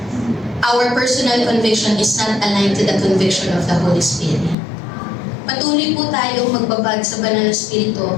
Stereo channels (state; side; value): drops out; right; at 4.5 s